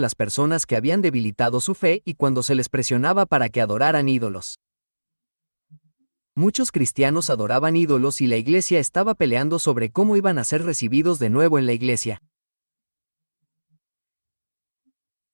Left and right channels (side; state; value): both; inverted; correlation -1.00